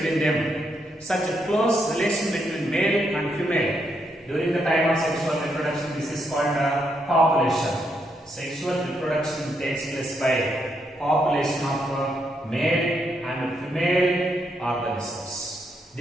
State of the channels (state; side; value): normal; both; correlation 0.78